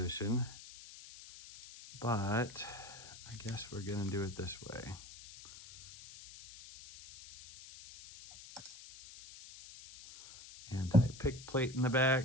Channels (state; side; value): noise; left; hiss, 16 dB below the sound